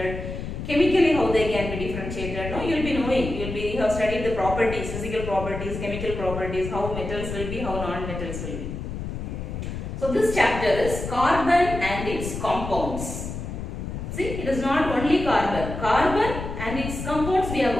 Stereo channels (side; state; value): left; noise; rumble, 6 dB below the sound